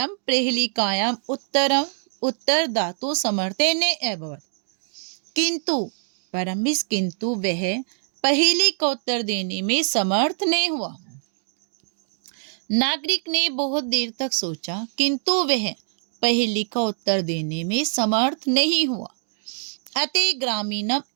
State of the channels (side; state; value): left; silent; digital silence